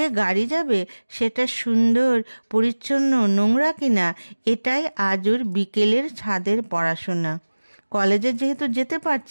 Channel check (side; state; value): both; inverted; correlation -1.00